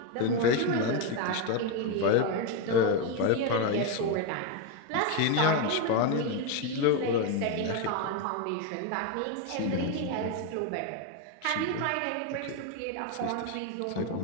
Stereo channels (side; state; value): both; different; correlation 0.02